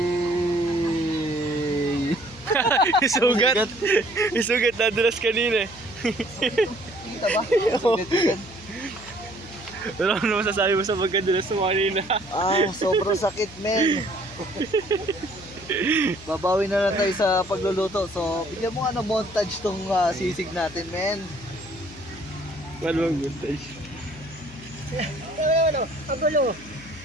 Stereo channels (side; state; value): left; noise; hum, 19 dB below the sound